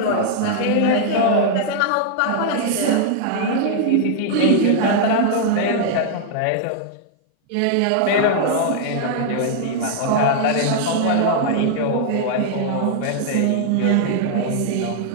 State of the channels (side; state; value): both; different; correlation -0.01